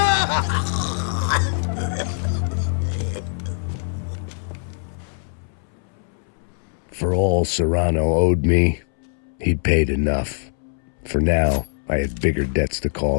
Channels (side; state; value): right; silent; 64 dB below the other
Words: For all Serrano owed me, he'd paid enough. For now, I had bigger debts to